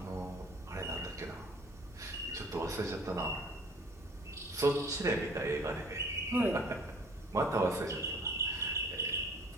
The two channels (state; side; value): normal; both; correlation 0.53